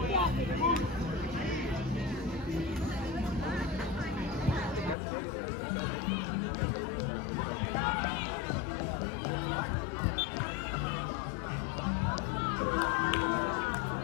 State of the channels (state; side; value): drops out; right; at 5.0 s